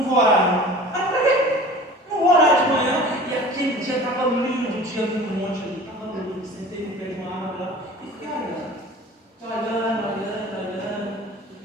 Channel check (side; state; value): both; normal; correlation 0.42